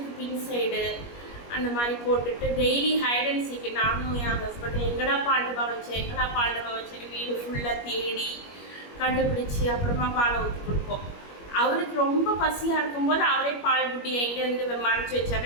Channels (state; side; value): late; right; 21 ms